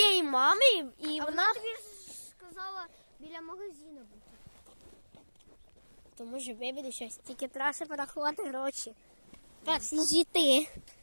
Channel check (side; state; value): both; inverted; correlation -1.00